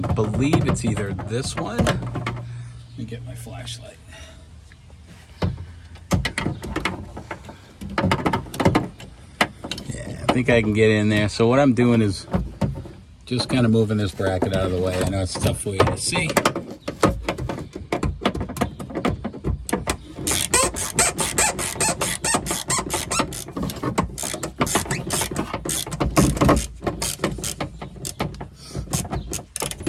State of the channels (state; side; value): identical; both; correlation 1.00